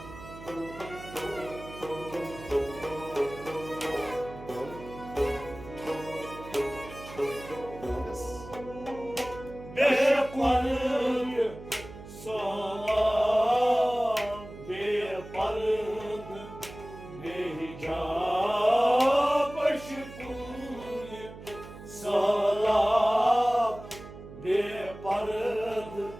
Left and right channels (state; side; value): noise; right; hum, 15 dB below the sound